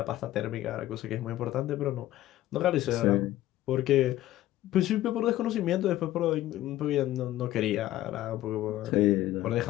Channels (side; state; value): right; quieter; 14.7 dB